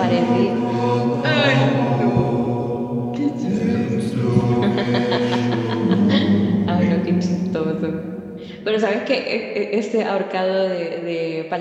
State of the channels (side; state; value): both; identical; correlation 1.00